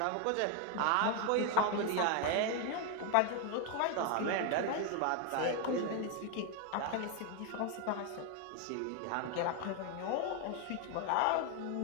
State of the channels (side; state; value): both; different; correlation 0.01